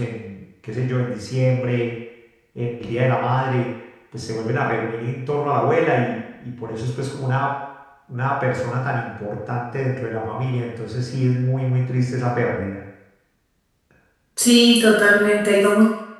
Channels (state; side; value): identical; both; correlation 1.00